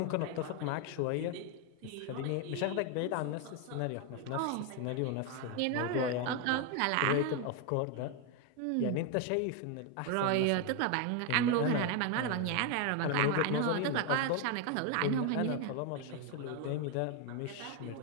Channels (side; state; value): both; different; correlation 0.01